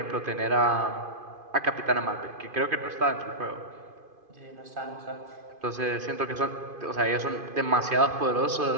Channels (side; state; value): left; late; 2.5 ms